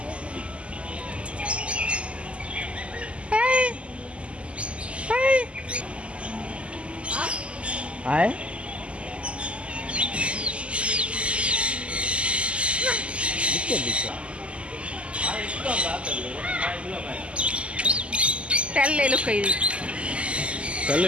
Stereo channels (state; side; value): late; left; 0.056 ms